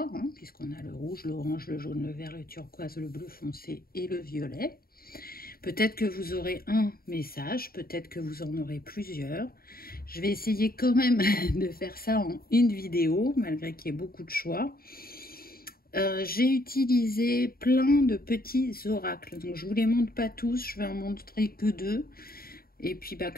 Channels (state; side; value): late; right; 0.43 ms